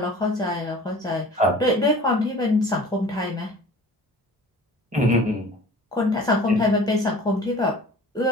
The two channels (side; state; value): both; normal; correlation 0.44